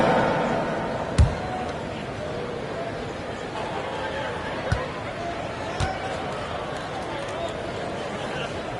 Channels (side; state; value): both; identical; correlation 1.00